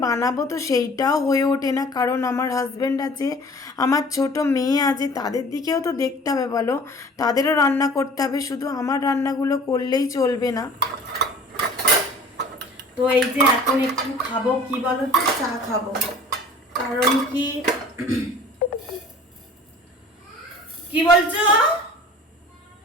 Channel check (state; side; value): normal; both; correlation 0.47